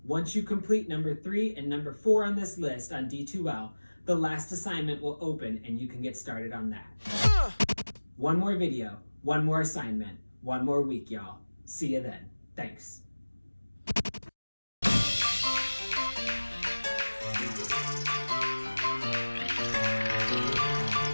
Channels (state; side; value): inverted; both; correlation -1.00